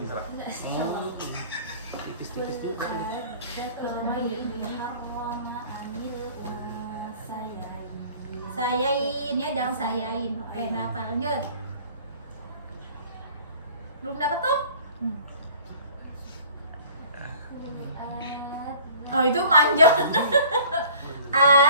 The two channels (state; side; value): inverted; both; correlation -0.49